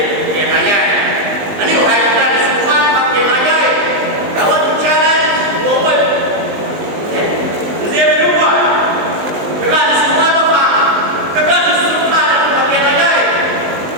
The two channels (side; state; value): left; late; 19 ms